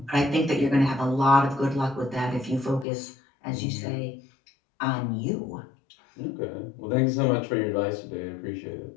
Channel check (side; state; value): right; drops out; at 2.9 s